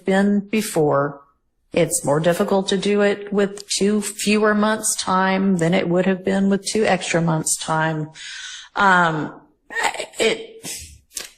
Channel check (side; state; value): both; identical; correlation 1.00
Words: been before. It's more difficult to do it with 2 fewer months' time than it would have been with 2 extra months' time.